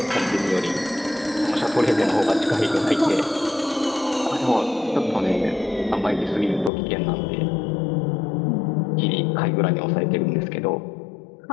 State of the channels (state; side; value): drops out; right; at 6.7 s